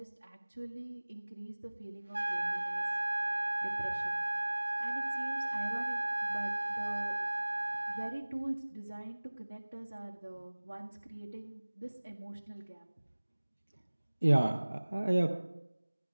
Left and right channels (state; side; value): inverted; both; correlation -1.00